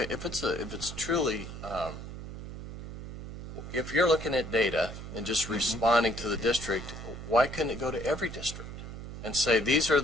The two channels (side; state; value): right; noise; hum, 10 dB below the sound